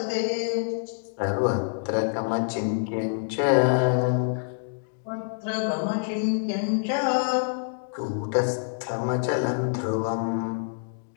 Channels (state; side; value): silent; right; digital silence